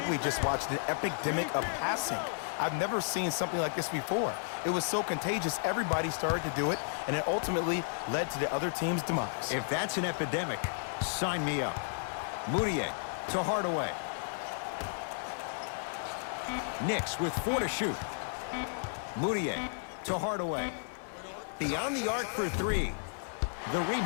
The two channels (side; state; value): right; silent; 56 dB below the other